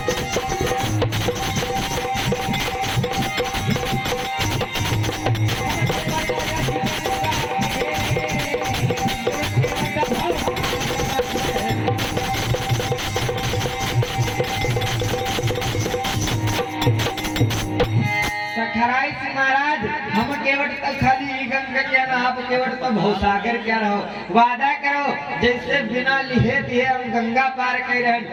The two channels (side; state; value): both; identical; correlation 1.00